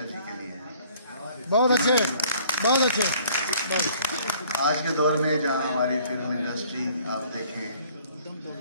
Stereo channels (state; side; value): inverted; both; correlation -0.57